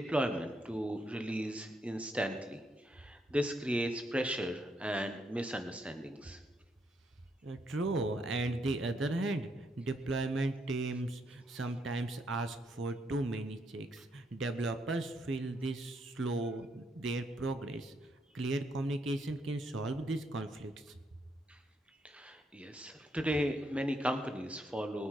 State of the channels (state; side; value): normal; both; correlation 0.76